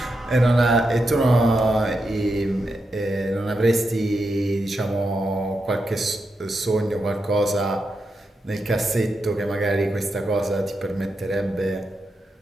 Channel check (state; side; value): normal; both; correlation 0.86